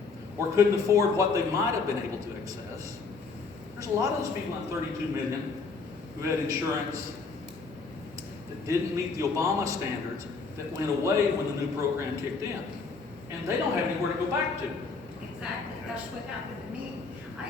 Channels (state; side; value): quieter; right; 4.5 dB